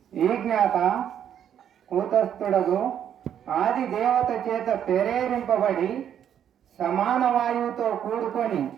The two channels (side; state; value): left; quieter; 9.5 dB